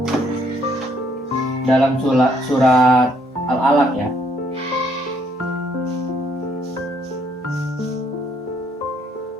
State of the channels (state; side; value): normal; both; correlation 0.68